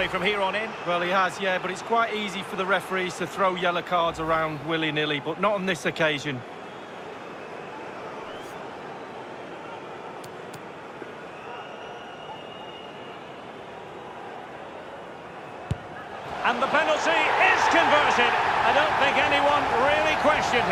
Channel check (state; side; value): identical; both; correlation 1.00